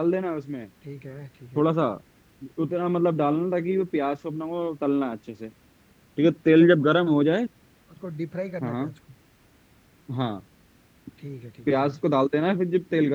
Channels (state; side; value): identical; both; correlation 1.00